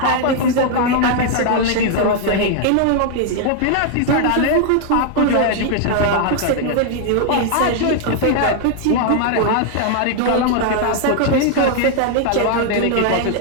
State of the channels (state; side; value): different; both; correlation 0.00